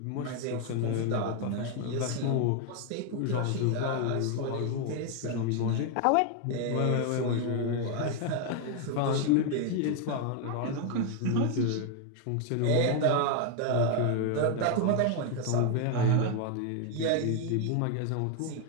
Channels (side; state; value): both; different; correlation 0.01